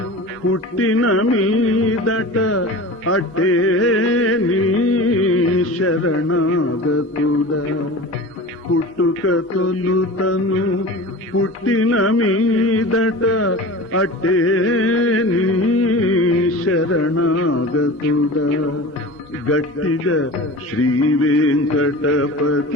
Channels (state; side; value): normal; both; correlation 0.35